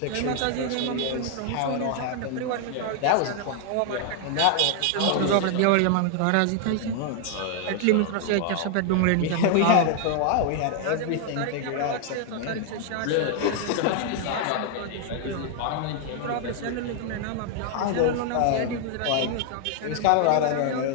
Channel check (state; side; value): different; both; correlation 0.00